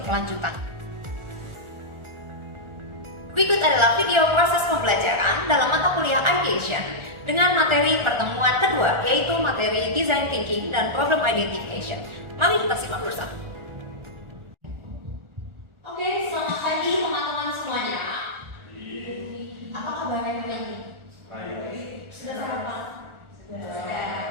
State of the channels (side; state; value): left; late; 1.4 ms